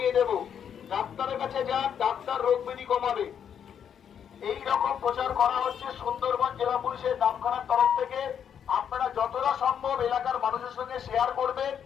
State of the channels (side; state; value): right; quieter; 8.3 dB